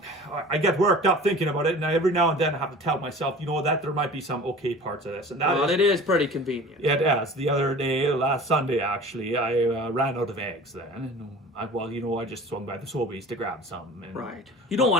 I get worked up thinking about it, and every now and then I have to tell myself, you know, that there might be some okay parts of this. And it is pretty convenient. It is. The other day, last Sunday, actually, I ran out of eggs then. And, I just swung by the Sobeys to grab some. And, right. You don't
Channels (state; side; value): normal; both; correlation 0.41